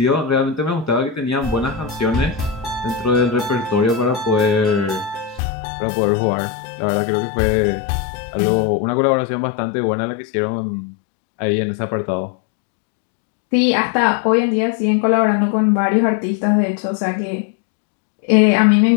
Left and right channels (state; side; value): drops out; right; at 5.4 s